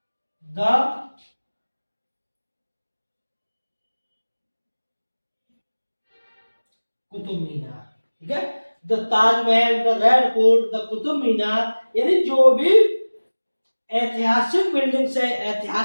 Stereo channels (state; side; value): inverted; both; correlation -1.00